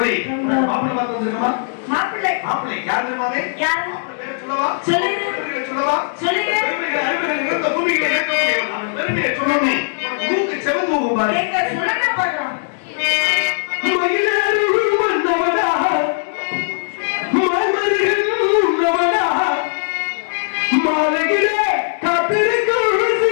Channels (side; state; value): right; silent; digital silence